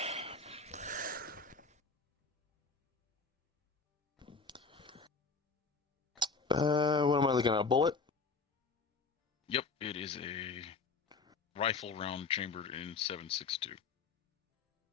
What am I looking at? A bullet? Yep, it is a rifle round chambered in 7.62.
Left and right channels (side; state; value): right; quieter; 4.6 dB